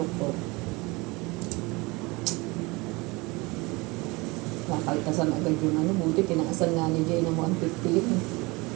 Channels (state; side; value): quieter; left; 24.6 dB